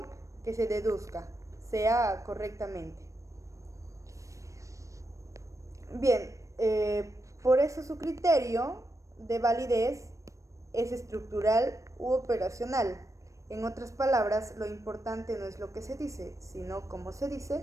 que se deduzca, sea correctamente. Bien, por eso su criterio de validez es estructural u operacional. En otras palabras, lo importante no es lo que se dice, sino cómo se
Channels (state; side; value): late; left; 0.15 ms